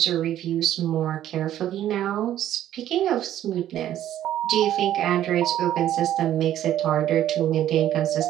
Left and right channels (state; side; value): quieter; left; 12.0 dB